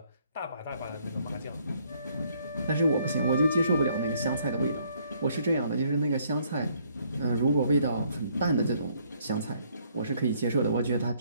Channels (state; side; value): inverted; both; correlation -0.66